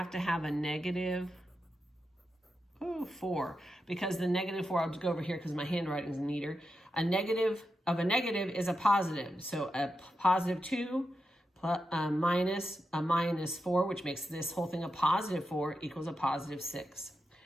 to have a -4, because the -4, I'll just go over here because my handwriting is neater. A negative of a negative is a positive. So a +2 minus a -4, which makes this whole thing a +4, equals a +6.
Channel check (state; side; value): normal; both; correlation 0.88